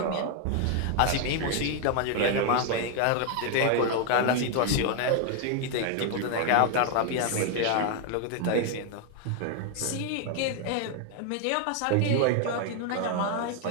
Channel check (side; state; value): both; different; correlation 0.00